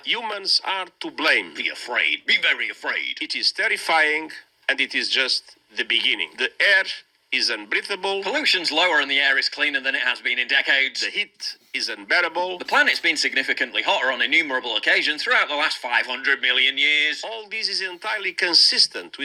Humans are to blame. Be afraid. Be very afraid. It is terrifying, and it is just the beginning. The air is unbreathable. Pollution's lower and the air is cleaner than it has been in decades. The heat is unbearable. The planet's been significantly hotter on innumerable occasions throughout the last 500 million years. All this is entirely consistent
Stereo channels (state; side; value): identical; both; correlation 1.00